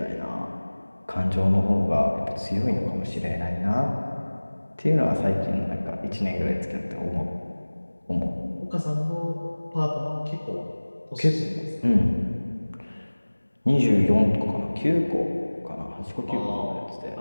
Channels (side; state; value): both; inverted; correlation -1.00